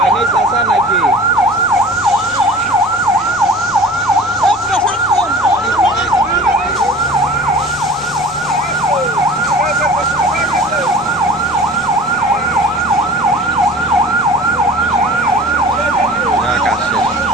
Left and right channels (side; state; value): both; normal; correlation 0.41